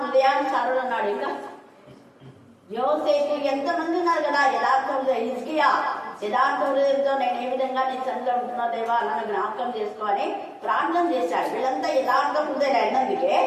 అన్నాడు. ఇంకా యోసేపు. ఎంతమంది ఉన్నారు కదా యథార్థ హృదయం. హిజ్కియా యథార్థ హృదయంతో నేను ఏ విధంగా నీ సన్నిధిలో ఉంటున్నా దేవా నన్ను జ్ఞాపకం చేసుకోని ప్రార్థన చేశాడు. వీళ్ళంతా యథార్థ హృదయం అయినందుకే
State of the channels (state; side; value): identical; both; correlation 1.00